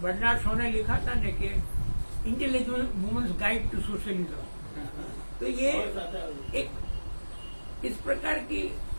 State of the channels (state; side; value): inverted; both; correlation -1.00